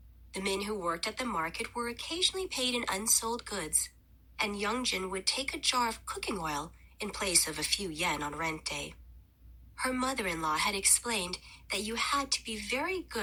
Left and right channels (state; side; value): identical; both; correlation 1.00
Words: The men who worked at the market were occasionally paid in unsold goods, and Youngjin would take a jar of cooking oil in place of a few yen on rent day. Her mother-in-law had explained that you had to be very